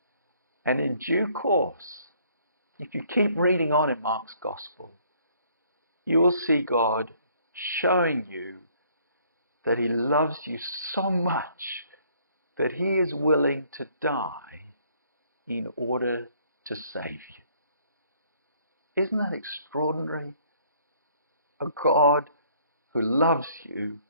And in due course, if you keep reading on in Mark's Gospel, you will see God showing you that he loves you so much that he is willing to die in order to save you. Isn't that extraordinary? A God who loves you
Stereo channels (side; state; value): both; inverted; correlation -0.62